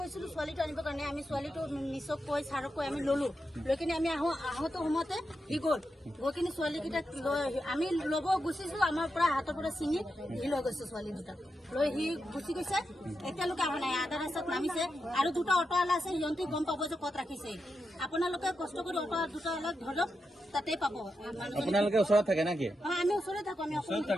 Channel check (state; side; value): normal; both; correlation 0.87